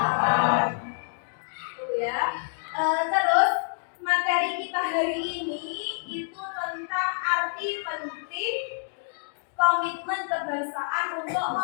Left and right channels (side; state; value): right; silent; digital silence